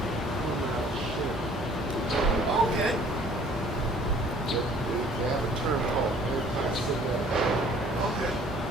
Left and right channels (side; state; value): both; normal; correlation 0.54